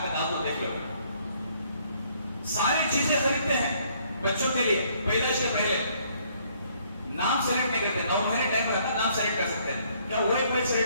کا نام تو دیکھ لو. ساری چیزیں خریدتے ہیں بچوں کے لیے پیدائش کے پہلے. نام سلیکٹ نہیں کرتے, 9 مہینے ٹائم رہتا نام سلیکٹ کر سکتے ہیں. کیا وہ ایک بچہ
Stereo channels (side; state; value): both; inverted; correlation -0.65